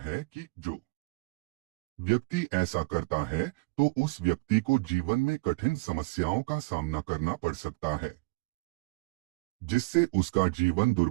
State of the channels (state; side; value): quieter; left; 25.5 dB